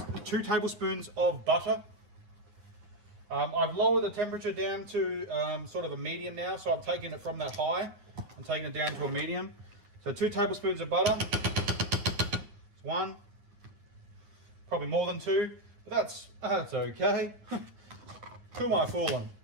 2 tablespoons of butter. I've lowered the temperature down to sort of a medium now. So I'm taking it from that high. I'm taking it down to a medium. So 2 tablespoons of butter. It's 1. Probably more than 2, but that's okay. Who am I fooling?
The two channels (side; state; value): left; late; 9.7 ms